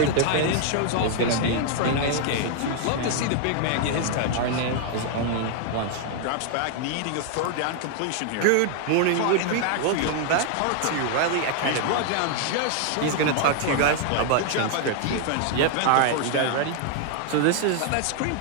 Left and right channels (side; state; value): both; different; correlation 0.00